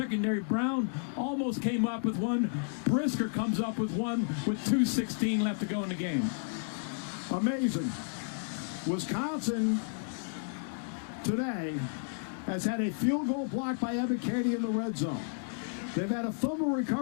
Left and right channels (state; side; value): silent; right; digital silence